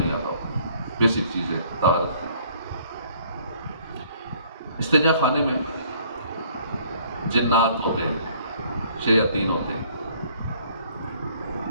آتا ہوتا۔ بیسک چیز ہے طہارت کی۔ استنجا خانے میں جنات ہوتے ہیں، شیاطین ہوتے ہیں،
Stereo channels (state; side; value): inverted; both; correlation -0.59